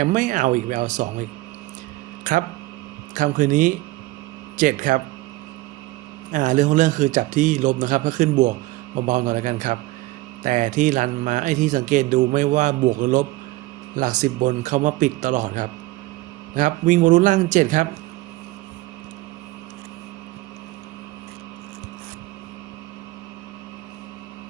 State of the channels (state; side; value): quieter; left; 19.2 dB